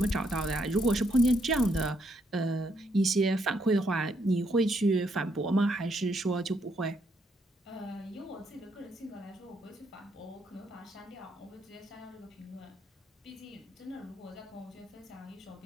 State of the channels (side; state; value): both; normal; correlation 0.74